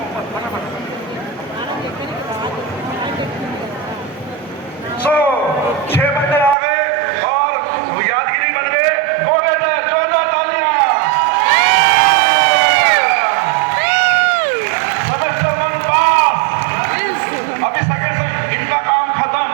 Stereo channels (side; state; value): left; drops out; at 6.6 s